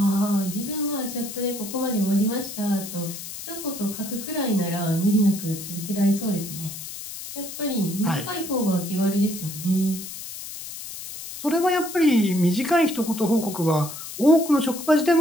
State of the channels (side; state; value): left; noise; hiss, 10 dB below the sound